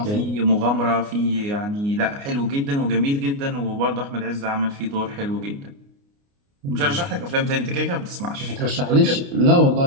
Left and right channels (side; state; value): left; late; 29 ms